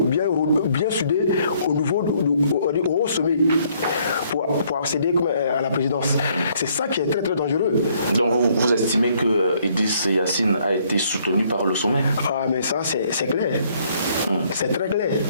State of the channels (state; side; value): inverted; both; correlation -0.66